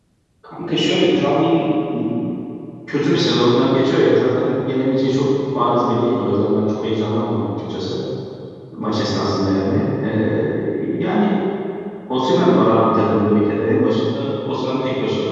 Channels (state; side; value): identical; both; correlation 1.00